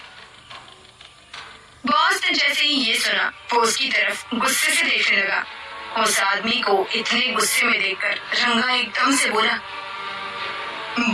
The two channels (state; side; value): identical; both; correlation 1.00